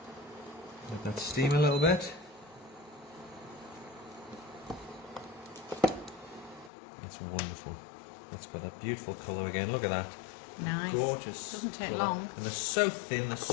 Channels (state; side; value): drops out; right; at 6.7 s